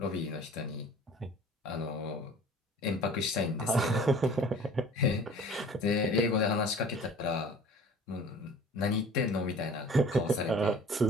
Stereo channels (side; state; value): both; normal; correlation 0.46